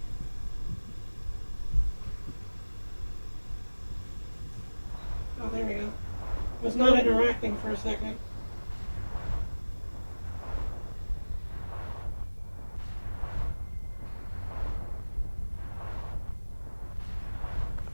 Oh, there we go. Was not interacting for a second.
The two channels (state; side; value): inverted; both; correlation -1.00